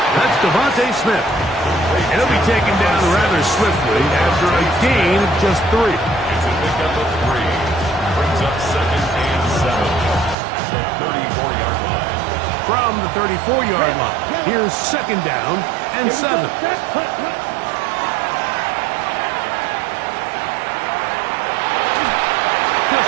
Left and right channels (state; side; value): drops out; left; at 10.4 s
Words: That's Devontae Smith. He'll be taken down rather swiftly after a gain of just 3. It's a pickup of 3. Brings up 2nd and 7 at the 34-yard line. From the 34-yard line, here's 2nd down and 7.